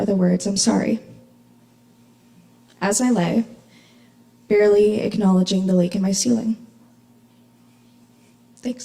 the words, "I'm sorry," as I lay, barely acknowledging the leak in my ceiling.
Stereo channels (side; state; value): both; identical; correlation 1.00